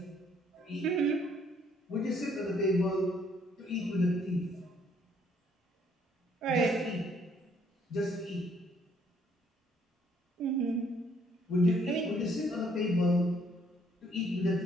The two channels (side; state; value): both; normal; correlation 0.65